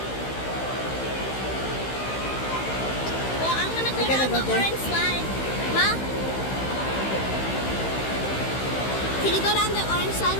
Well, I'm gonna go We're gonna down go the there. orange slide. Ma? Can you go down the orange slide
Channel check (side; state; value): right; late; 15 ms